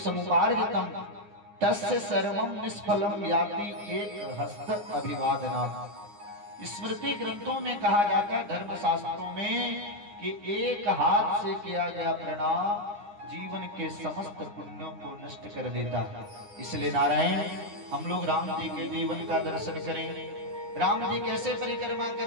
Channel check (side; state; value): left; late; 9.8 ms